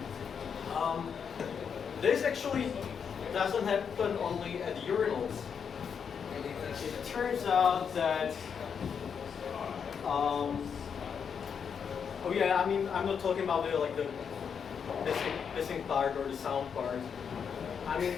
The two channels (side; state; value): right; quieter; 6.9 dB